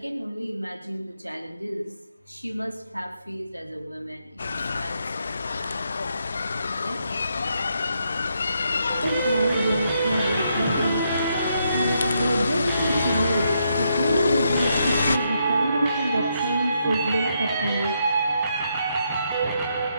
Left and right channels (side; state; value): both; inverted; correlation -0.78